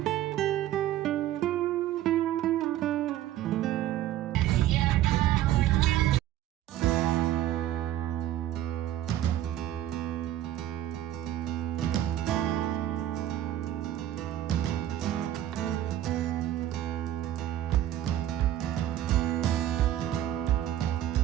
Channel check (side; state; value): left; quieter; 12.8 dB